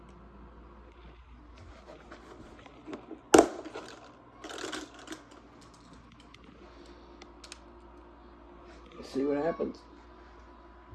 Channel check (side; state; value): both; identical; correlation 1.00